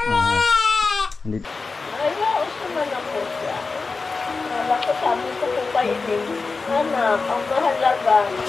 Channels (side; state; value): right; quieter; 4.2 dB